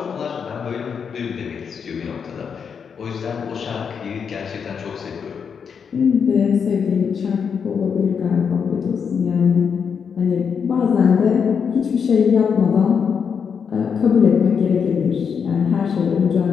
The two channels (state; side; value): quieter; right; 6.6 dB